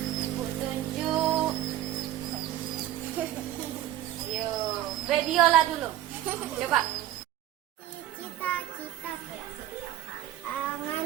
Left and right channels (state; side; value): quieter; left; 12.9 dB